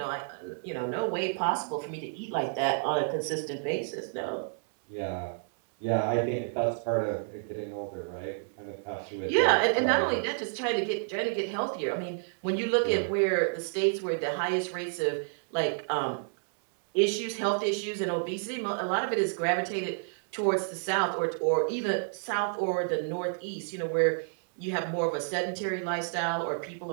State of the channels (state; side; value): silent; left; digital silence